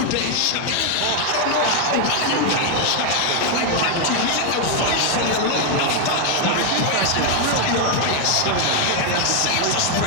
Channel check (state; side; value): different; both; correlation 0.01